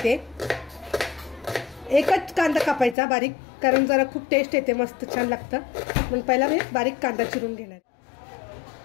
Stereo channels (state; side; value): drops out; right; at 3.0 s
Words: एकच कांदा कापायचा बारीक, कारण जरा खूप टेस्ट येते, मस्त छान लागतं. म्हणून पहिला मी बारीक कांदा चिरून घेणार.